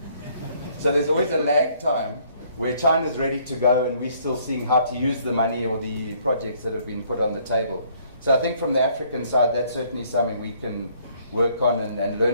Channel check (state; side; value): inverted; both; correlation -0.64